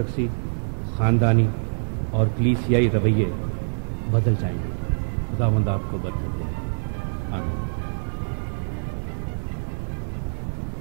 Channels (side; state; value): left; silent; digital silence